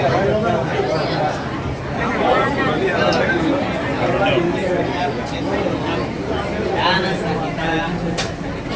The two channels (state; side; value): identical; both; correlation 1.00